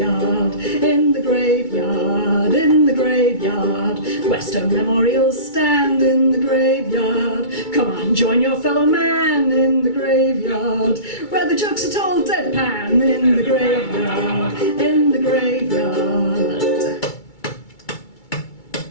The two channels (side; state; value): right; late; 2.3 ms